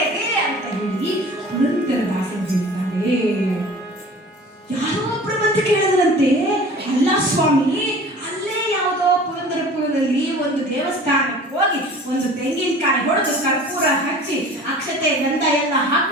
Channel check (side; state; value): both; normal; correlation 0.43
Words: ಅಂತ ಹೇಳಿ ಪುರಂದರದಾಸರು ಹೇಳ್ತಾರೆ. ಯಾರೋ ಒಬ್ಬರು ಬಂದು ಕೇಳಿದ್ರಂತೆ, ಅಲ್ಲ ಸ್ವಾಮಿ, ಅಲ್ಲೇ ಯಾವುದೋ ಪುರಂದರಪುರದಲ್ಲಿ ಒಂದು ದೇವಸ್ಥಾನಕ್ಕೆ ಹೋಗಿ ಒಂದು ತೆಂಗಿನಕಾಯಿ ಹೊಡೆದು ಕರ್ಪೂರ ಹಚ್ಚಿ ಅಕ್ಷತೆ ಗಂಧ ಎಲ್ಲ